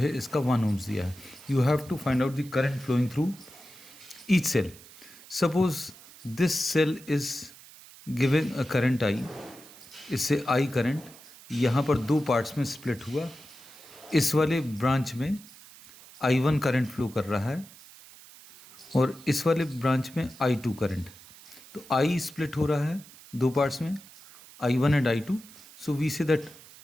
इसका 1 ohms दिया है। You have to find out the current flowing through each cell. Suppose this cell is given a current I, इससे I करंट यहाँ पर दो पार्ट्स में स्प्लिट हुआ। इस वाले ब्रांच में I1 करंट फ्लो कर रहा है और इस वाले ब्रांच में I2 करंट। तो I स्प्लिट हो रहा है दो पार्ट्स में, I1 and I2। So we say that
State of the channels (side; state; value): right; noise; hiss, 20 dB below the sound